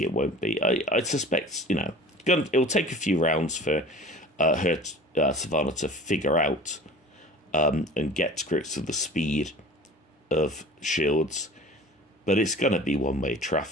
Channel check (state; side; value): normal; both; correlation 0.42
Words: it won't be. I suspect, you know, it'll take a few rounds for Savannah to figure out and get to grips with the speed of Shields. But it's going to be one-way